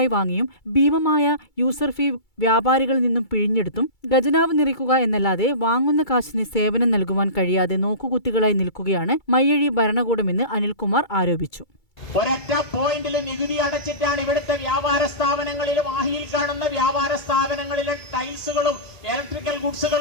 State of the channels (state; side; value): late; right; 2.3 ms